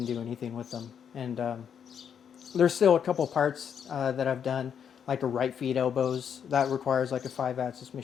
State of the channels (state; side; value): quieter; right; 7.9 dB